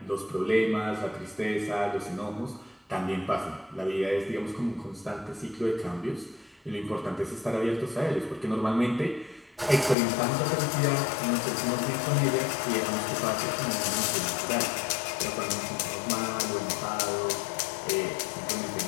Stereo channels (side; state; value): right; drops out; at 10.0 s